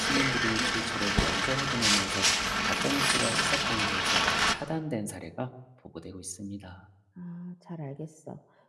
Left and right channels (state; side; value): identical; both; correlation 1.00